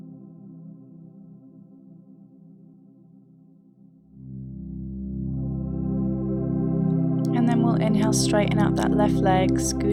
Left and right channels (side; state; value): both; identical; correlation 1.00